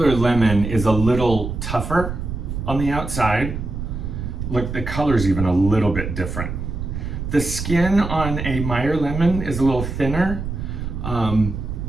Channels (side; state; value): right; noise; rumble, 5 dB below the sound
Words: lemon is a little tougher on the outside. Look, the color's even a little bit different. The skin on a Meyer lemon is a little thinner.